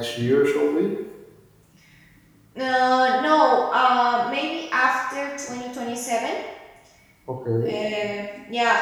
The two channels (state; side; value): identical; both; correlation 1.00